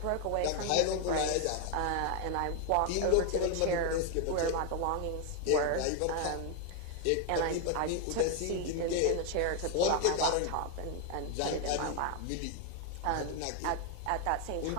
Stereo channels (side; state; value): both; different; correlation 0.00